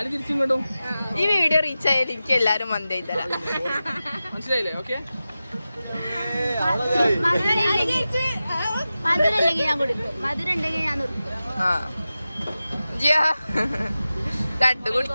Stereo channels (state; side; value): inverted; both; correlation -0.94